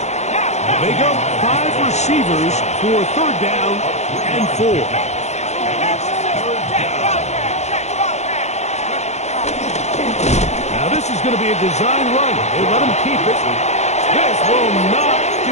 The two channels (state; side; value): late; right; 0.33 ms